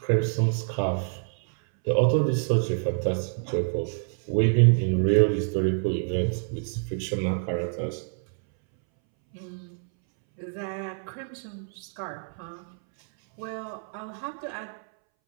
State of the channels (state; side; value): silent; left; 60 dB below the other